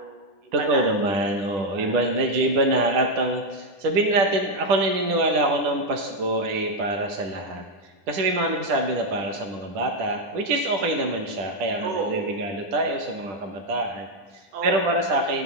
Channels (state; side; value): late; left; 10 ms